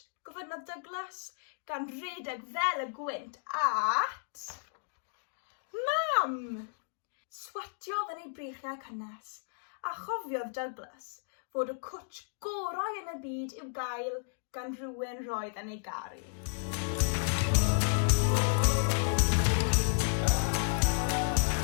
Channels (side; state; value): right; silent; digital silence